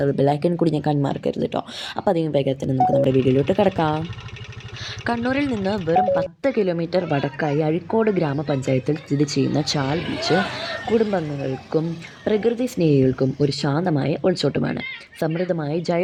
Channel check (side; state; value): both; identical; correlation 1.00